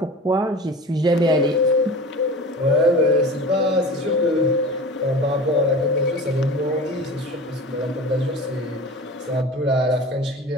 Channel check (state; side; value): normal; both; correlation 0.35